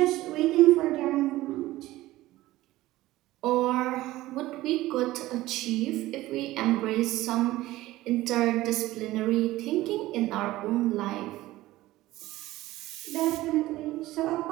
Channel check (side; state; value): left; quieter; 17.0 dB